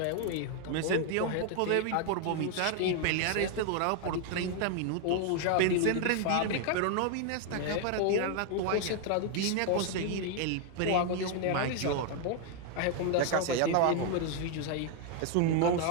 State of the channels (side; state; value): both; different; correlation 0.00